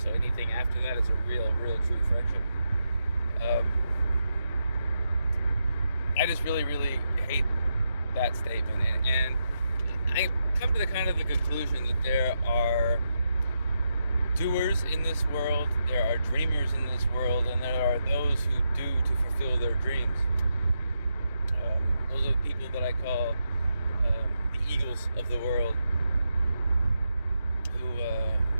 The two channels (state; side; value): inverted; both; correlation -0.84